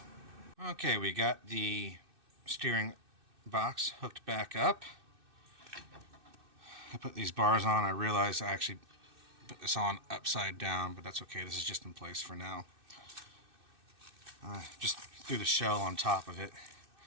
Okay, we got the steering box hooked back up. I put these bars on. I realized I actually put this on upside down, but that's okay. This is just in place for now. Just threw the shell on top of it,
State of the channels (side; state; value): left; late; 2.6 ms